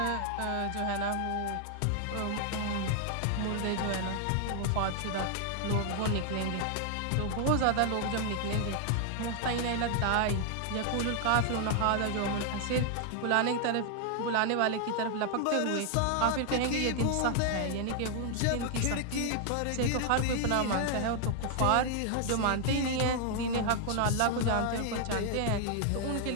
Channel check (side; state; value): both; different; correlation 0.00